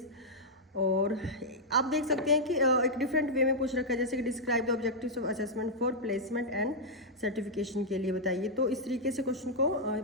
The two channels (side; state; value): both; normal; correlation -0.07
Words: और आप देख सकते हैं कि एक डिफरेंट वे में पूछ रखा है, जैसे कि describe the objectives of assessment for placement and certification के लिए बताइए। तो इस तरीके से क्वेश्चन को